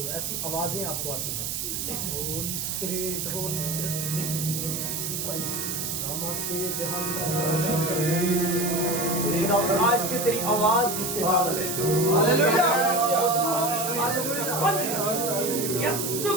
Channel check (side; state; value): right; noise; hiss, 3 dB below the sound